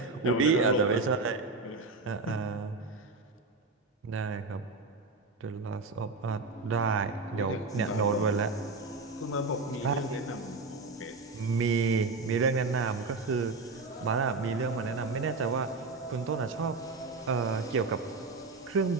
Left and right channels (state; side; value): quieter; left; 3.8 dB